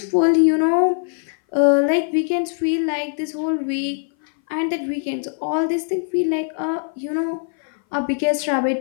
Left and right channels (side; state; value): right; silent; 59 dB below the other